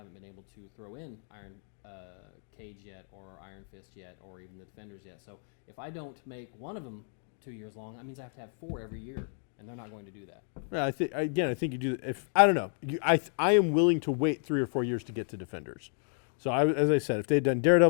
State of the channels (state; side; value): silent; right; 57 dB below the other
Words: been able to throw in Iron Cage yet, or Iron Fist yet, or even the Defenders yet. So if I don't make one of them 2 years long, that means I have to have 4 every year, and they're not going to do that. Yeah, I think you do. If I don't know, I am willing to wait 3 or 4 years to get to Defenders. So as I said, if they'd done